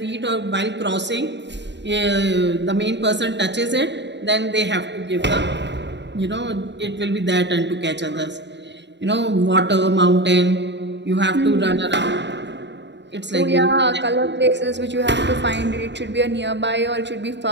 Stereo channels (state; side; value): late; left; 0.52 ms